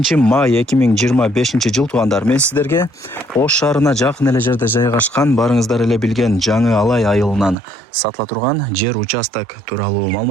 май 2025 жыл туугандар. Мен сиздерге Ош шаарына жакын эле жерде жайгашкан, барыңыздар эле билген Жаңы Алай айылынан сатыла турган жер участок тууралуу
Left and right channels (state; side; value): drops out; left; at 7.6 s